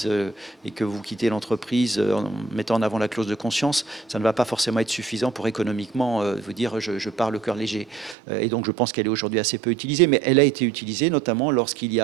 et que vous quittez l'entreprise en mettant en avant la clause de conscience, ça ne va pas forcément être suffisant pour économiquement vous dire je pars le cœur léger. Et donc je pense qu'elle est aujourd'hui assez peu utilisée, mais elle a été utilisée notamment lorsqu'il y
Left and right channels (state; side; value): drops out; left; at 8.2 s